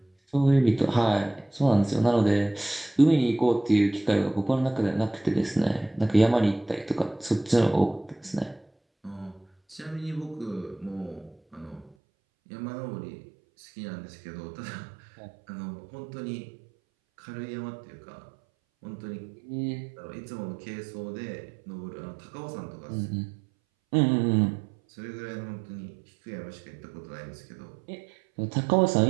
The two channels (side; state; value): left; drops out; at 12.0 s